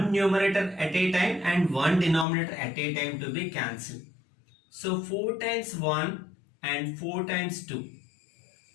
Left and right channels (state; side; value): drops out; right; at 2.2 s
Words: numerator at a time and one denominator at a time to be cancelled. So 4 times 1 and 4 times 2.